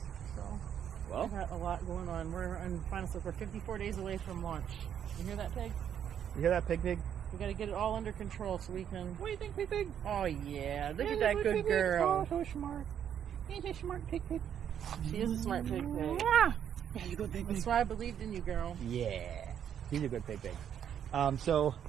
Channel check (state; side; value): quieter; left; 9.1 dB